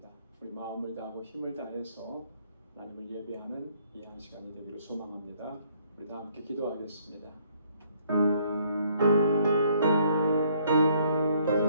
우리 마음을 다하고 힘을 다해서 하나님을 예배하는 이 한 시간이 되기를 소망합니다. 우리 다 함께 기도하겠습니다.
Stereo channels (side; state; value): both; inverted; correlation -0.65